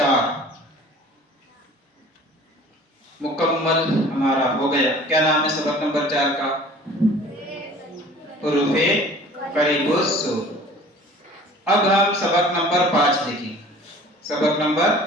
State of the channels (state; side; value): normal; both; correlation 0.47